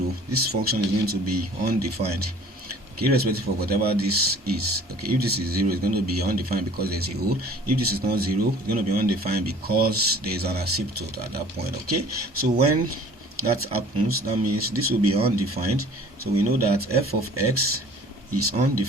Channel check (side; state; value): both; normal; correlation 0.49